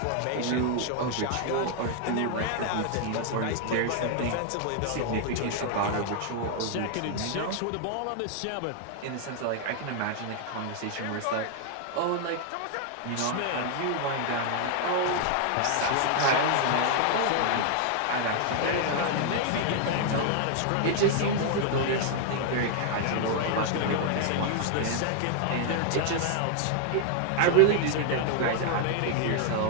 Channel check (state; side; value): different; both; correlation 0.00